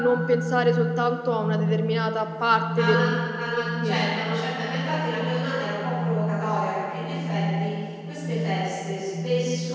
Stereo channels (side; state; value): both; identical; correlation 1.00